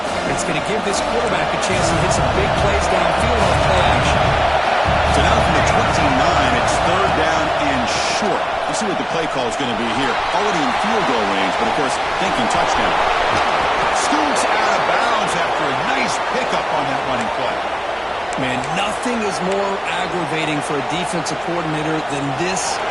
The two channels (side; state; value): both; identical; correlation 1.00